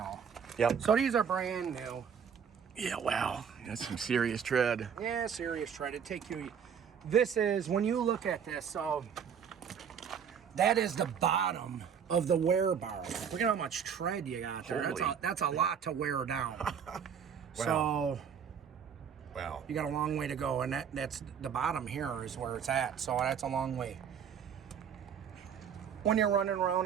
Yep. So these are brand new. Yeah, wow. That's some serious tread. Yeah, serious tread. It'd take you. This is, when you look at this, so that is the bottom of the wear bar. Look at how much tread you got there. That's a lot to wear down. Wow. So Wow. you got a long way to go, and that's the bottom here is where it's at. So that's a long way. When you're running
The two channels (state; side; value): quieter; left; 7.5 dB